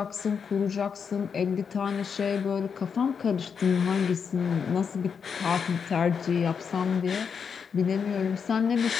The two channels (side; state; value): right; quieter; 6.5 dB